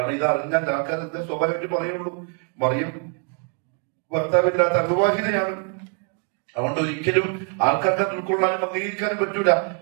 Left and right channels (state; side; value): quieter; left; 39.1 dB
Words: ഇത് അറിഞ്ഞാൽ ആൾക്കാരെന്താ സ്വാഭാവികമായിട്ട് പറയുള്ളൂ, മറിയം ഭർത്താവില്ലാത്ത അവിവാഹിതയാണ്. അതുകൊണ്ട് ഒരിക്കലും ആൾക്കാർക്ക് ഉൾക്കൊള്ളാനും അംഗീകരിക്കാനും പറ്റൂല.